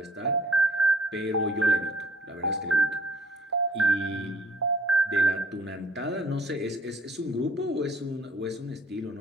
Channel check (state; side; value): normal; both; correlation 0.56